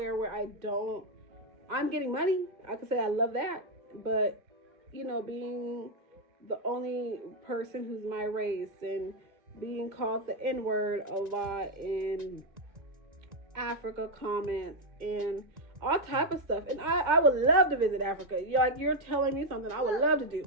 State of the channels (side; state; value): left; late; 1.8 ms